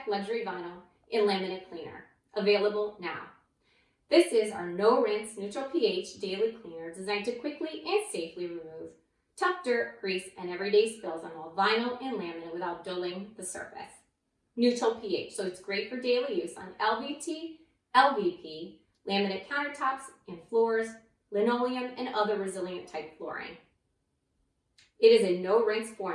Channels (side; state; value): both; identical; correlation 1.00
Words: Luxury Vinyl in Laminate Cleaner, available now. This is our no-rinse, neutral pH daily cleaner designed to quickly and safely remove tough dirt, grease, and everyday spills on all vinyl and laminate without dulling the surface. Neutral pH, so it's great for daily use on LVT, LVP, laminate countertops and floors, linoleum, and other resilient type flooring. It is a no-rinse